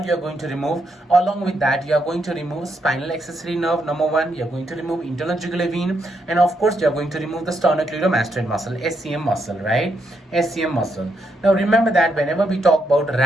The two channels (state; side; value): normal; both; correlation 0.79